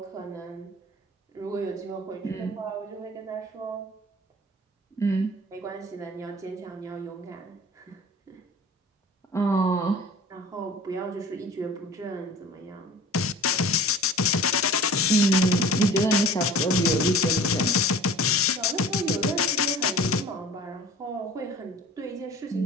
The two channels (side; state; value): both; normal; correlation 0.42